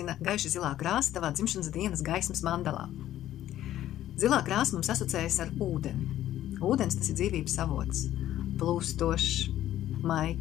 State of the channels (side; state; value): right; quieter; 12.9 dB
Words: gaiši zilā krāsa tavā dzimšanas dienas gaismas mandalā? Zilā krāsa mums asociējas ar ūdeni. Ūdens tas ir dzīvības avots, plūstošs,